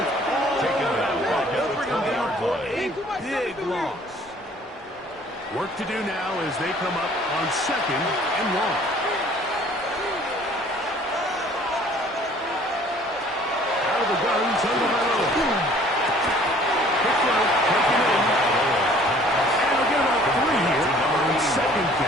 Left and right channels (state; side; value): normal; both; correlation 0.54